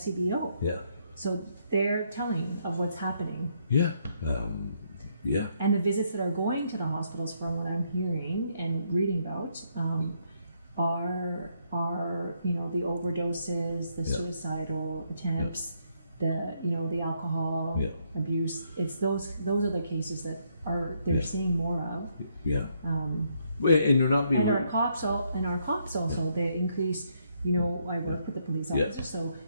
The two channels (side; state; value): both; inverted; correlation -0.74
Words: Yeah. So they're telling of what's happening. Yeah. Yeah. And the visits that are going to the hospitals, from what I'm hearing and reading about, are the overdoses, the suicidal attempts, the alcohol abuse. It's those are the cases that they're seeing more of. Yeah. And you're not being. And our cops also they increase. I work with the police officers, so